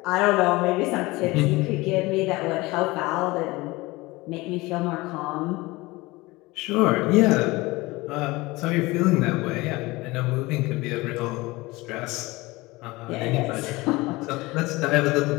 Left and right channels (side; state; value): right; quieter; 21.6 dB